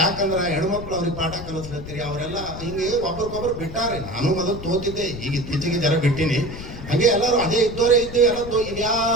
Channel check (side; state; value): left; noise; rumble, 11 dB below the sound